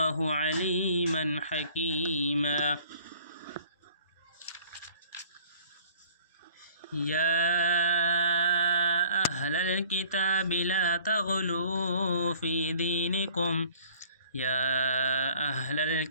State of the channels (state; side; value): inverted; both; correlation -0.53